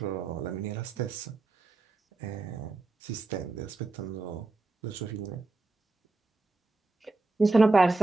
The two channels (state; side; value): quieter; left; 3.4 dB